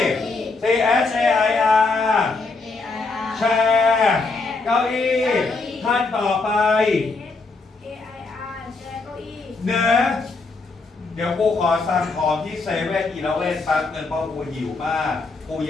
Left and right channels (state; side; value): quieter; right; 3.8 dB